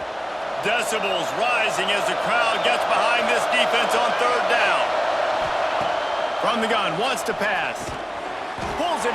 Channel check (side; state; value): both; identical; correlation 1.00